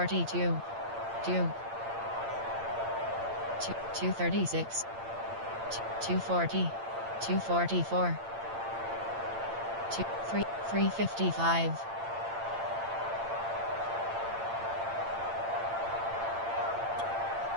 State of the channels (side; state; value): left; late; 8.8 ms